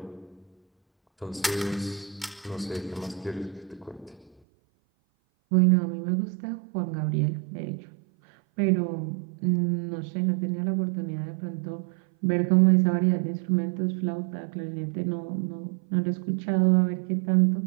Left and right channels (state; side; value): drops out; left; at 4.3 s